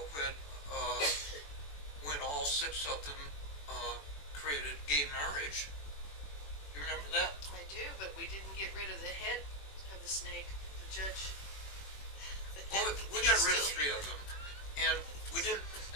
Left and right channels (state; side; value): late; right; 21 ms